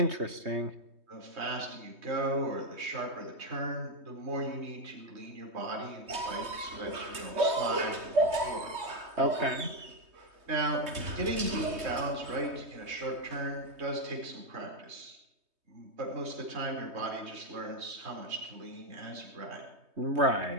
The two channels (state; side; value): late; left; 3.2 ms